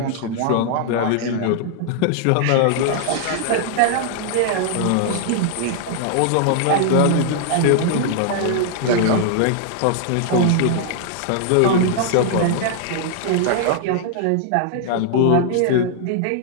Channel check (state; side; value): different; both; correlation 0.00